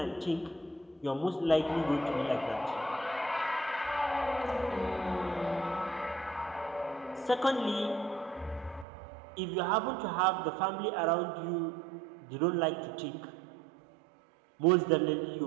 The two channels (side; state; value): left; drops out; at 8.8 s